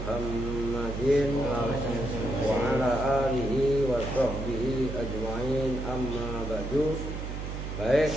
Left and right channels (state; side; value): noise; right; hum, 6 dB below the sound